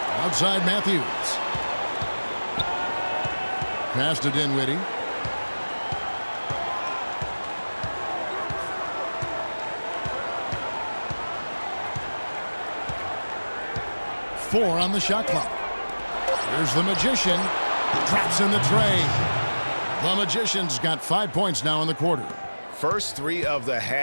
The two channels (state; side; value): inverted; both; correlation -1.00